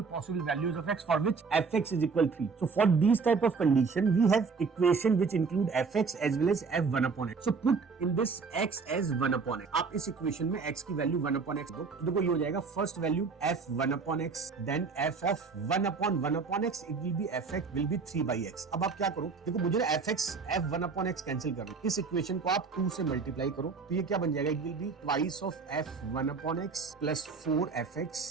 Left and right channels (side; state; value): left; quieter; 4.9 dB